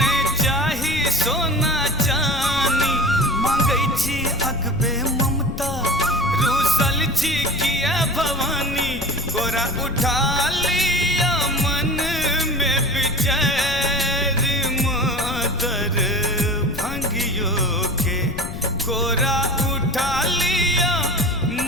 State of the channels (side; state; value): left; noise; rumble, 8 dB below the sound